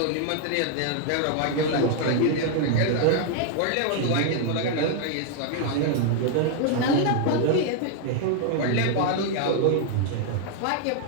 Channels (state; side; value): different; both; correlation 0.00